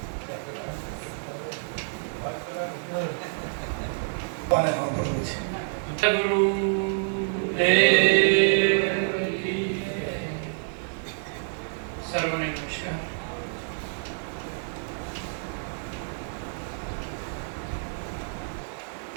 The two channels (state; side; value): silent; left; digital silence